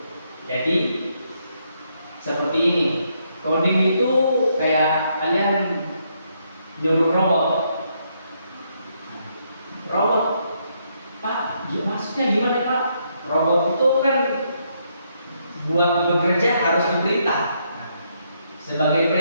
Jadi seperti ini. Coding itu kayak kalian nyuruh robot. Robot, Pak, maksudnya gimana Pak? Robot itu kan buat bekerja harus diperintah. Nah, sebagai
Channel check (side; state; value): both; inverted; correlation -0.75